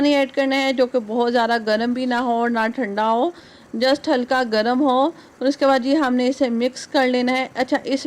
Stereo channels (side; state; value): both; identical; correlation 1.00